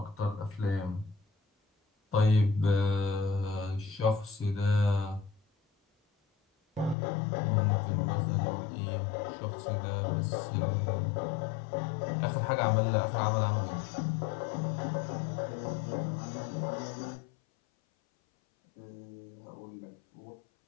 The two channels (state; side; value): drops out; right; at 7.0 s